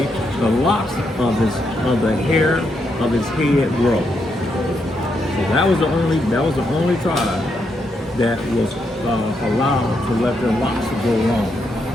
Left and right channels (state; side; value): normal; both; correlation 0.80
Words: the locks of the hair of his head grow. So that was the only tribe that was allowed to let their locks grow long.